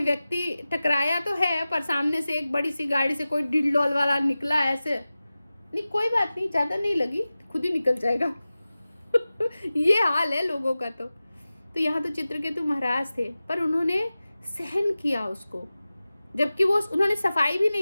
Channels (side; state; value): both; inverted; correlation -0.96